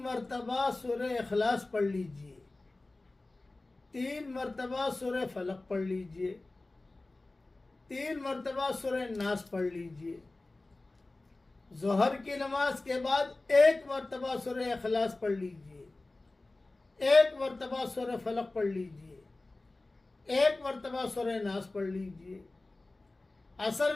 مرتبہ سورہ اخلاص پڑھ لیجئے، 3 مرتبہ سورہ فلق پڑھ لیجئے، 3 مرتبہ سورہ ناس پڑھ لیجئے۔ ظہر کی نماز کے بعد 1 مرتبہ سورہ اخلاص پڑھ لیجئے، 1 مرتبہ سورہ فلق پڑھ لیجئے، 1 مرتبہ سورہ ناس پڑھ لیجئے۔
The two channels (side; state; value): right; quieter; 3.0 dB